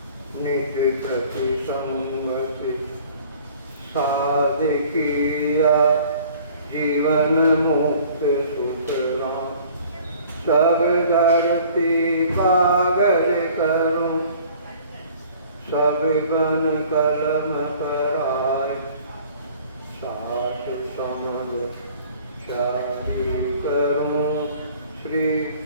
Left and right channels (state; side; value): inverted; both; correlation -0.52